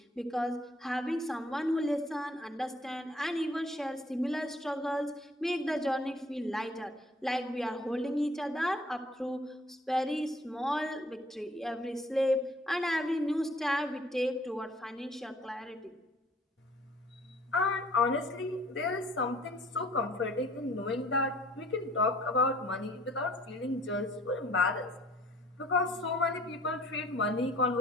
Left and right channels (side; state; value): both; normal; correlation 0.56